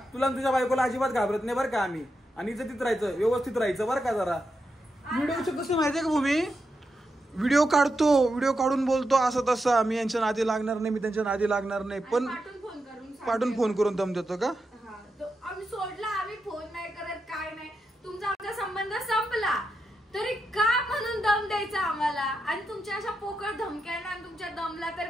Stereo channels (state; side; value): normal; both; correlation 0.86